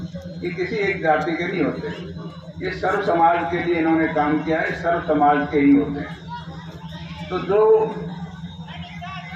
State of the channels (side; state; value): both; identical; correlation 1.00